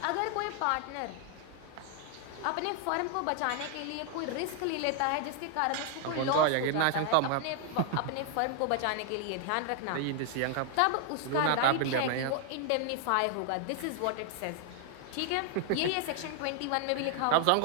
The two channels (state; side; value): different; both; correlation 0.00